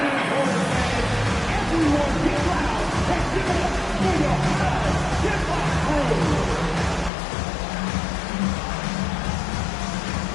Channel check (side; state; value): right; drops out; at 7.1 s